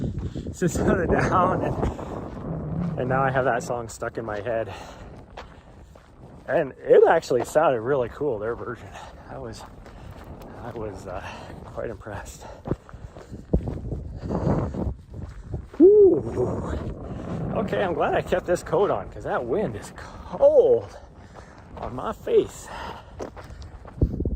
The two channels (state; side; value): identical; both; correlation 1.00